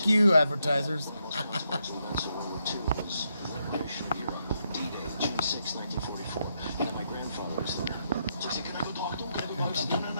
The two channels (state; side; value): inverted; both; correlation -0.79